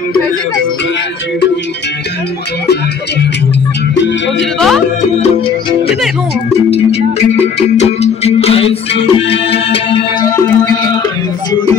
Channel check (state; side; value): quieter; right; 6.4 dB